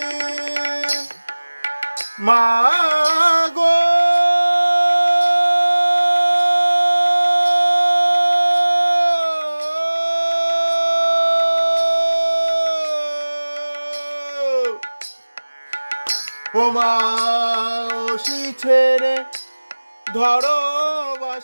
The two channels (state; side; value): inverted; both; correlation -1.00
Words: मागो ওমা ওসি ছেড়ে ধরো